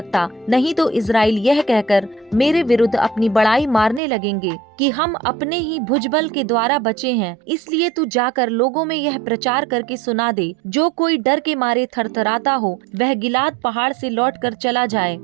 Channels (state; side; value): drops out; left; at 4.0 s